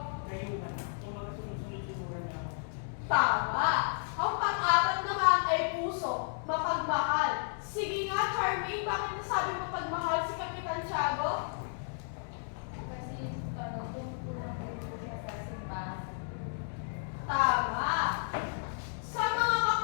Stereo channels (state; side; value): silent; right; digital silence